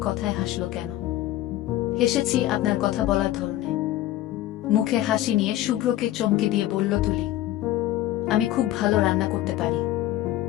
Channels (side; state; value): right; quieter; 14.5 dB